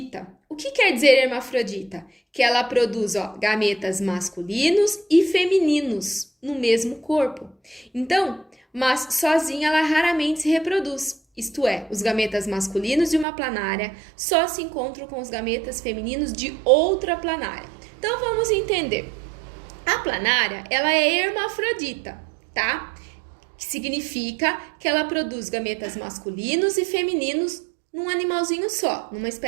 O que quer dizer hermafrodita? Que ela produz gametas masculinos e femininos no mesmo corpo. Então, mas sozinha ela raramente se reproduz. Isto é, os gametas masculinos de uma planária só se encontram com os gametas femininos de outra planária. Então, vamos entender. A planária, ela é hermafrodita, tá? Que significa que ela produz gametas masculinos e femininos num animalzinho só, numa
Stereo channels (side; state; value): left; drops out; at 13.2 s